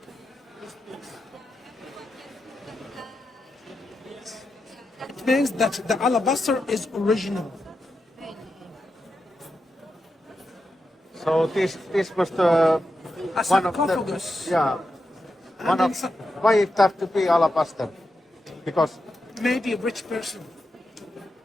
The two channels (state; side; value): normal; both; correlation 0.87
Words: This piece. It means that the alabaster is original. So this was the A one of sarcophagus. the yeah. And One then of why it have to be alabaster? Because maybe a rich person.